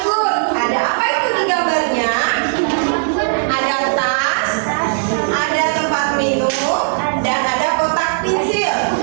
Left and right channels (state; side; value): silent; left; digital silence